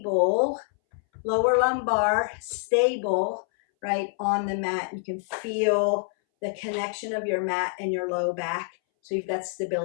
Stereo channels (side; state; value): right; silent; 61 dB below the other